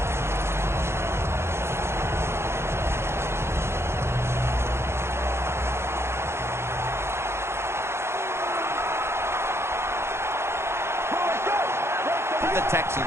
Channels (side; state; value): left; late; 0.12 ms